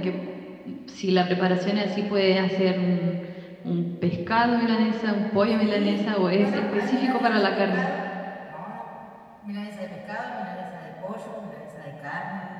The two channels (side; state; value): both; identical; correlation 1.00